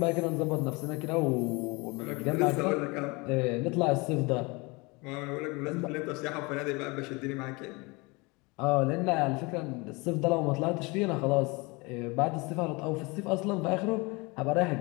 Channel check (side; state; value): right; quieter; 26.5 dB